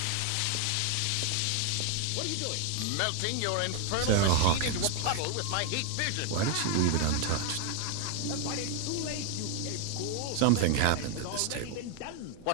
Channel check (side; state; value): both; different; correlation 0.00